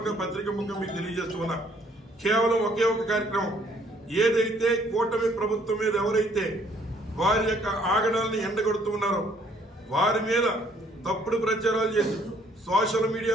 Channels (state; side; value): normal; both; correlation 0.63